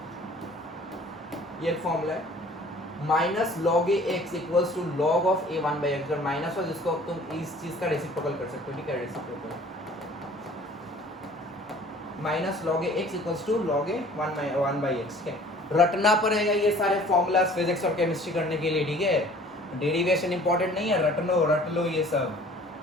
ये एक फॉर्मूला है। Minus log A X equals to log of A 1 by X. अगर माइनस हो जिसको तुम इस चीज का रेसिप्रोकल कर सकते हो। ठीक है, reciprocal minus log A X equals to log A 1 by X. ठीक है, रटना पड़ेगा ये सारे फॉर्मूलाज फिजिक्स और केमिस्ट्री करने के लिए। ठीक है, डेरिवेशन इंपॉर्टेंट नहीं है, रट लो ये सब।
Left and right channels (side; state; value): both; normal; correlation 0.51